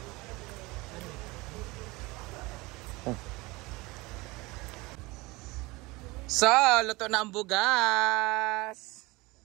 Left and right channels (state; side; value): quieter; left; 22.9 dB